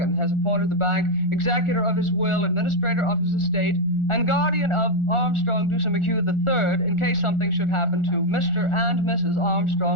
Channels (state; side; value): late; right; 1.4 ms